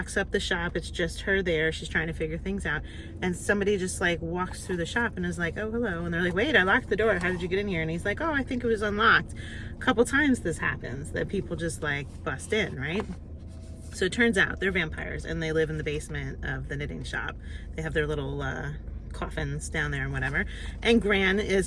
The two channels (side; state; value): both; identical; correlation 1.00